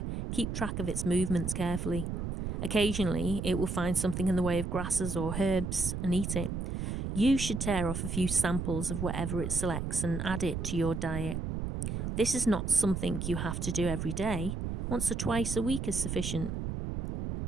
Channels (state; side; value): noise; right; rumble, 3 dB below the sound